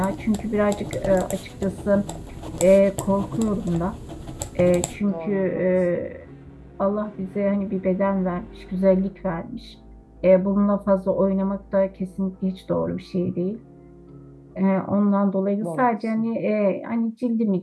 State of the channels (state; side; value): identical; both; correlation 1.00